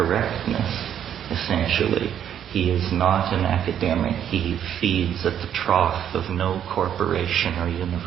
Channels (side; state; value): left; quieter; 9.6 dB